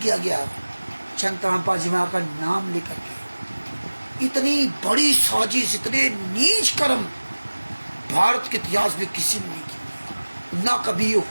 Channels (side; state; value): both; inverted; correlation -1.00